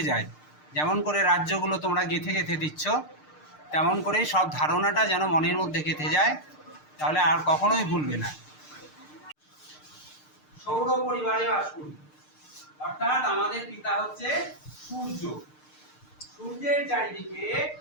যায়। যেমন করে রাজ্যগুলো তোমরা গেঁথে গেঁথে দিচ্ছ, তেমন করে সব ধারণাটা যেন মনের মধ্যে গেঁথে যায়, তাহলে আর কখনোই ভুলবে না। সৌর পরিবারে বাস করি, অর্থাৎ আমাদের পিতা হচ্ছে সূর্য। সূর্যের চারিদিকে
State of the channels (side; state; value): right; late; 6.6 ms